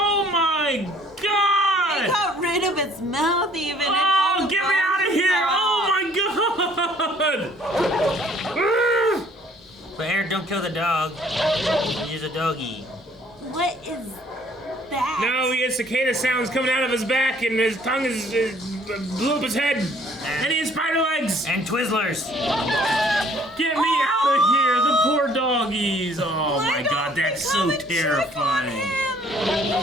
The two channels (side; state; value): both; normal; correlation 0.58